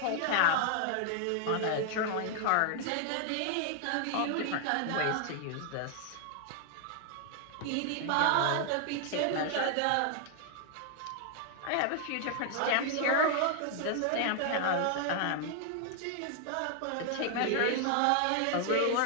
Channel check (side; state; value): both; different; correlation 0.00